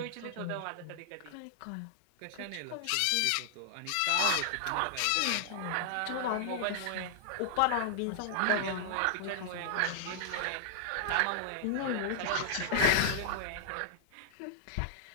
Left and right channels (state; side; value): different; both; correlation -0.01